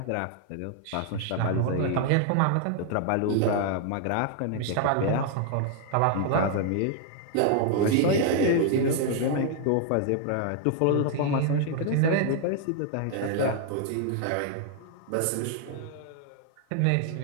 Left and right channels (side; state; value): both; different; correlation 0.00